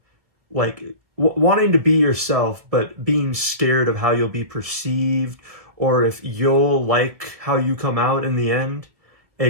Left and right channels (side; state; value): left; late; 1.7 ms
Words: like wanting to be yourself, but being scared of how you'll be perceived or if you'll like how you come out in the end.